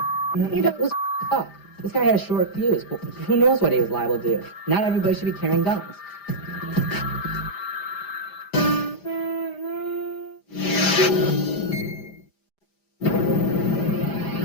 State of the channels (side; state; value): right; late; 5.0 ms